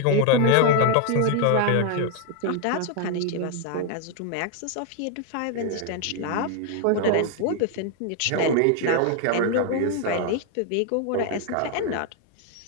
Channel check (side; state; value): both; different; correlation 0.00